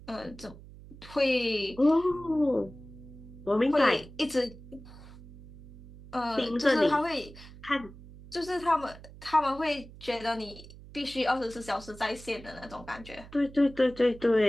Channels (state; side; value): noise; right; hum, 18 dB below the sound